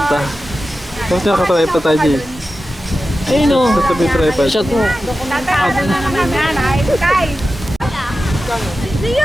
Tapos nakatripod tayo, Jay. Ayun o. Sa tabi tripod. Shot mo. Tatawag na naman yan, ay, kay.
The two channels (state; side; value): normal; both; correlation 0.93